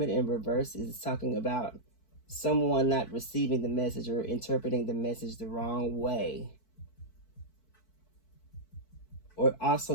in reverse is talking about someone not receiving the message or interpreting the message the wrong way, or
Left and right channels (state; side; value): late; right; 4.6 ms